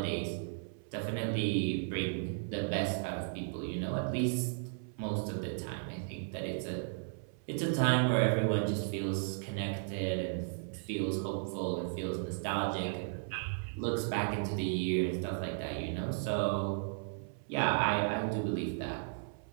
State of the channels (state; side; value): silent; left; 54 dB below the other